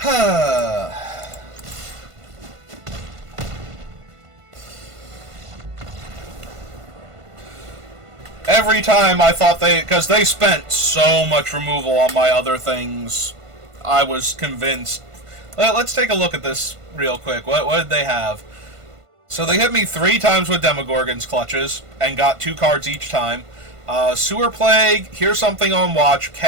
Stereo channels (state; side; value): late; left; 1.5 ms